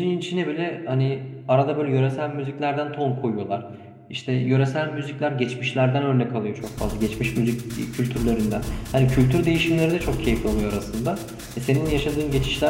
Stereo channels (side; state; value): both; identical; correlation 1.00